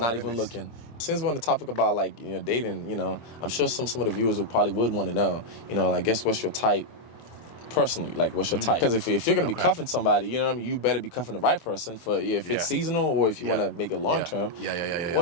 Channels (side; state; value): right; late; 24 ms